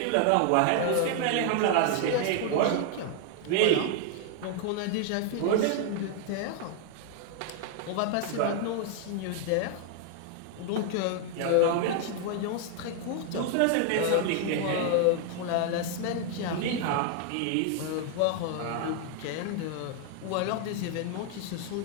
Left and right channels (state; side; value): different; both; correlation 0.00